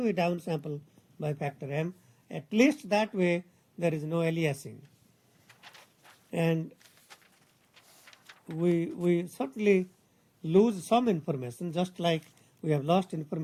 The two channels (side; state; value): both; identical; correlation 1.00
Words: we downsample by factor m. At least that way there is no aliasing. And we certainly lose some information, just like we have lost